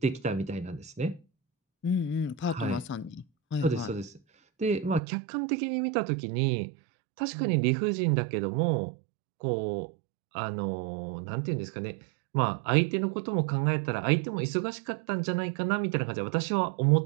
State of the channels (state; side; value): drops out; left; at 5.0 s